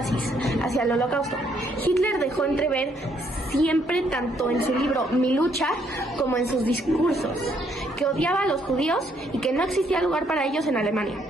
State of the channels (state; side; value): normal; both; correlation 0.70